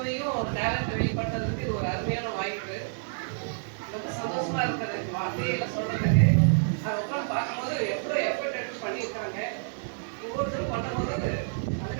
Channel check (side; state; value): left; silent; digital silence